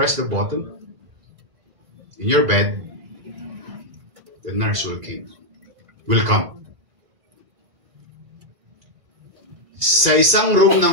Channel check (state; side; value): late; left; 2.3 ms